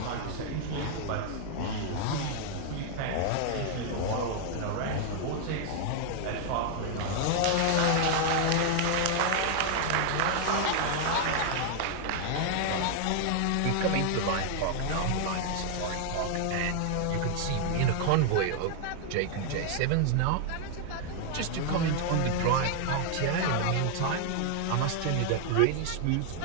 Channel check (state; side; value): different; both; correlation 0.00